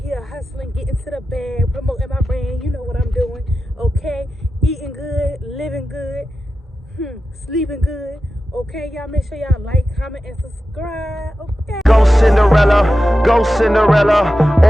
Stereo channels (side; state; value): both; normal; correlation 0.92